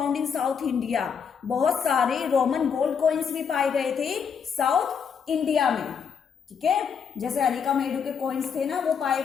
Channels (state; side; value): quieter; right; 6.7 dB